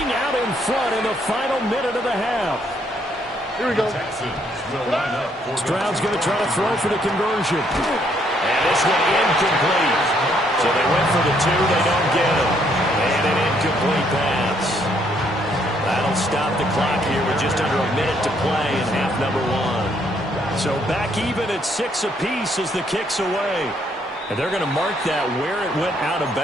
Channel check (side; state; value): both; normal; correlation 0.70